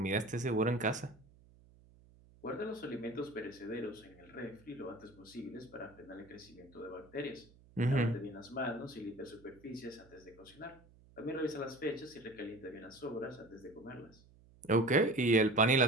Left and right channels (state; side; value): noise; right; hum, 26 dB below the sound